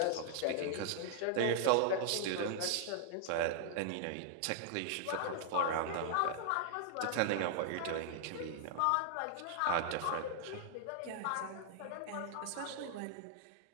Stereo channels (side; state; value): both; different; correlation 0.00